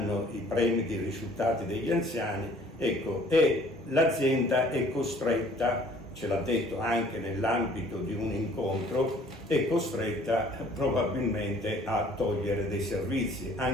i premi dei risultati degli anziani, ecco, e l'azienda è costretta, ce l'ha detto anche nell'ambito di un incontro, è costretta probabilmente a togliere dei servizi,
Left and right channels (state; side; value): normal; both; correlation 0.55